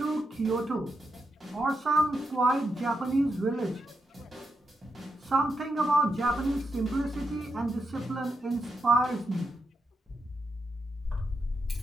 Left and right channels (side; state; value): both; normal; correlation 0.84